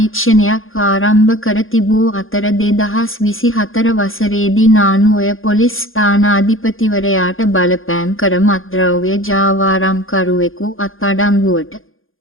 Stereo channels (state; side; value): late; right; 0.60 ms